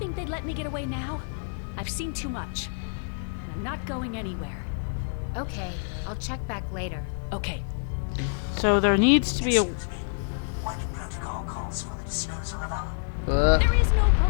they'd let me get away now? I've seen too much. And I'm not going anywhere. Okay, I'll check back later. Okay. So there needs to be a... What protocol calls for the disposal of our... There is no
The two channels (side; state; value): right; silent; digital silence